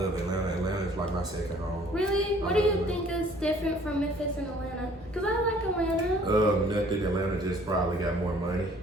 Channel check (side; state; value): both; normal; correlation 0.56